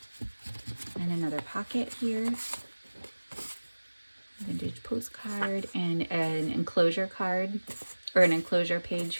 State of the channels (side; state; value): both; inverted; correlation -1.00